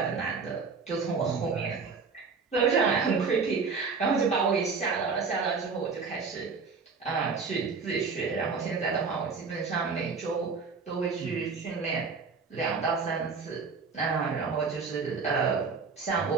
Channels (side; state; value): left; quieter; 5.0 dB